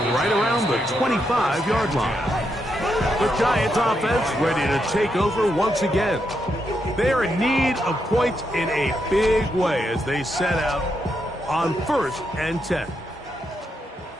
right around the 25-yard line. The Giants offense ready to take over once again. They're in need of points in a big way as they set out on 1st and 10.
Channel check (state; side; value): normal; both; correlation 0.82